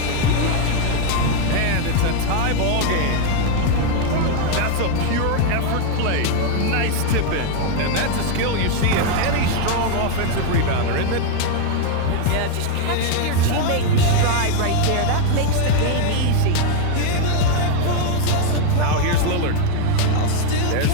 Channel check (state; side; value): different; both; correlation 0.01